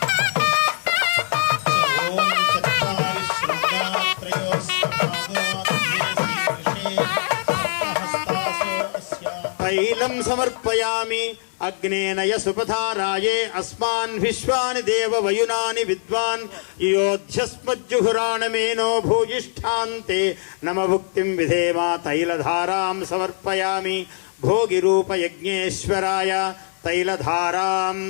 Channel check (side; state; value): right; silent; digital silence